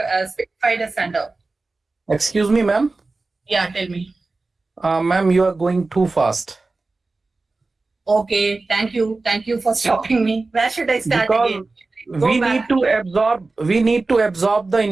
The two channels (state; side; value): quieter; left; 3.5 dB